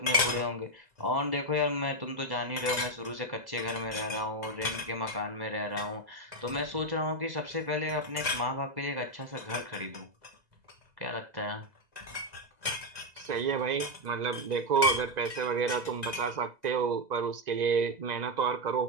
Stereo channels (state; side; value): late; left; 2.0 ms